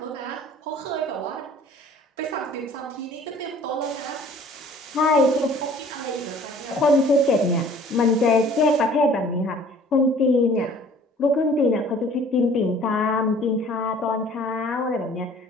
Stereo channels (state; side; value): normal; both; correlation 0.51